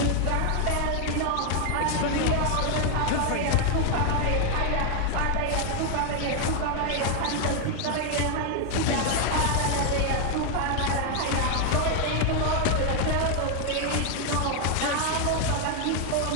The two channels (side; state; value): both; different; correlation 0.00